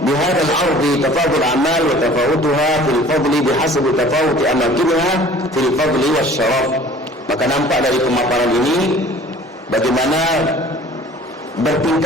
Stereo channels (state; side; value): normal; both; correlation 0.48